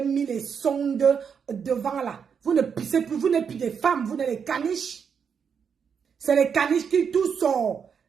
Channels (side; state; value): left; quieter; 6.8 dB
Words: les sondes devant là. Vous ne pissez plus, vous n'êtes plus des femmes, vous n'êtes les caniches. C'est les caniches qui tout sort.